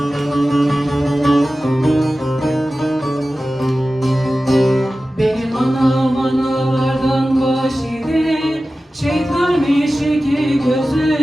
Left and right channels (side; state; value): both; normal; correlation 0.95